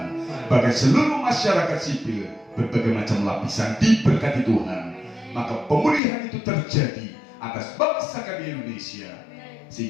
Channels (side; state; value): right; drops out; at 6.0 s